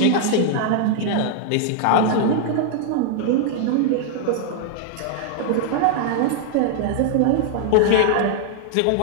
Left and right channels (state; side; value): different; both; correlation 0.00